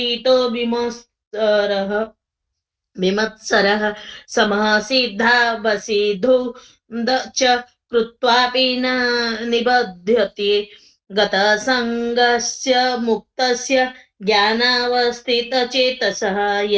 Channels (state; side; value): identical; both; correlation 1.00